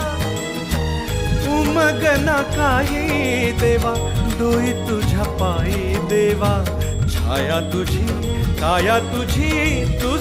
उमगना काही देवा, डोई तुझ्या पायी देवा, छाया तुझी काया तुझी,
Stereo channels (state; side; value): identical; both; correlation 1.00